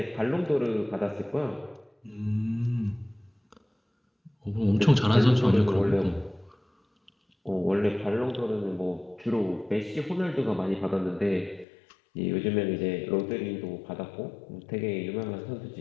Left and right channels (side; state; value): right; drops out; at 11.7 s